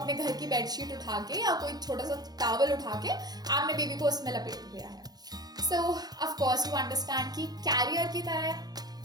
घर की बेडशीट उठा के या कोई छोटा सा टॉवल उठा के आपने बेबी को उसमें लपेट दिया है। सो ऑफ कोर्स यू अंडरस्टैंड कि कैरियर की तरह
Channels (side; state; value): left; late; 0.19 ms